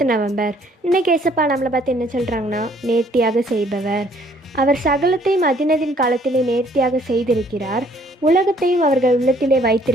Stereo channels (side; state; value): both; normal; correlation 0.62